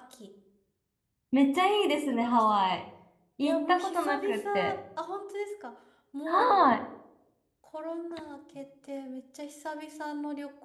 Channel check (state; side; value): identical; both; correlation 1.00